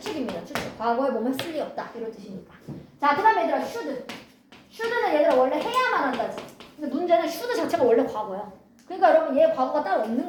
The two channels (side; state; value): both; identical; correlation 1.00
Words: 추측. 과거에 뭐뭐 했을 리 없다. 이런 뜻이니까. 자, 그 다음에 얘들아 should. should는 얘들아 원래 해야만 한다지. 근데 문제는 should 자체가 원래 과거야. 그러니까 여러분 얘 과거가 따로 없는